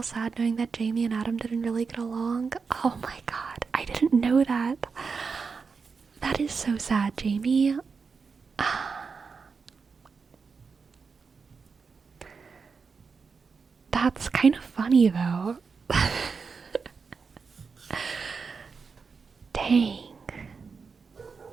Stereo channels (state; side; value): quieter; left; 5.2 dB